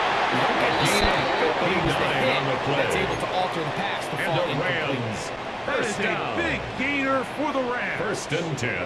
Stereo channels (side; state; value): both; identical; correlation 1.00